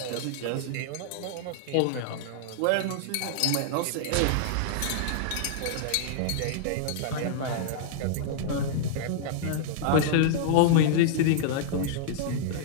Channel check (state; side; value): different; both; correlation -0.01